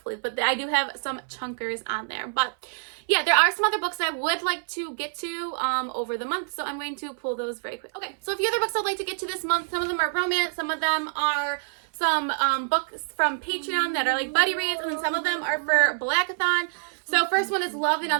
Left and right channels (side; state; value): left; silent; 58 dB below the other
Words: But I do have some chunkers on there. But yeah, there are some other books that I would like to get to over the month, so I'm going to pull those very quick. Okay, so a few other books I'd like to get to this month. Some of them are romance, some of them are some books from Patreon that are like buddy reads, and then some of them are for Blackathon. So first one is Love and